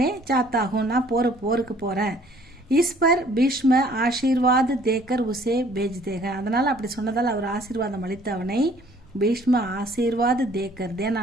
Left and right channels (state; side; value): noise; right; rumble, 28 dB below the sound